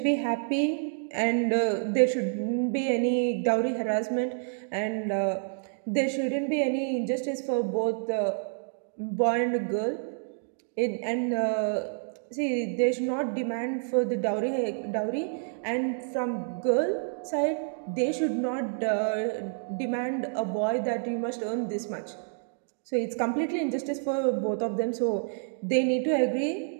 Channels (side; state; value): left; silent; digital silence